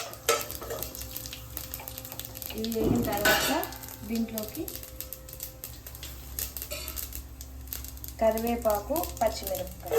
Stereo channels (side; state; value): both; identical; correlation 1.00